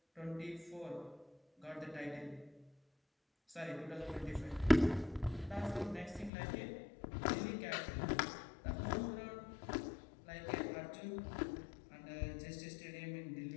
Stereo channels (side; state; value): right; drops out; at 6.3 s